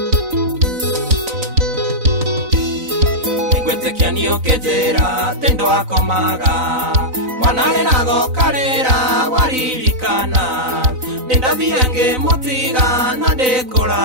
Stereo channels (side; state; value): left; late; 4.0 ms